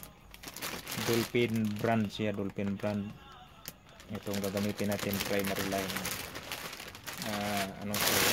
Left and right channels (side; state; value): both; identical; correlation 1.00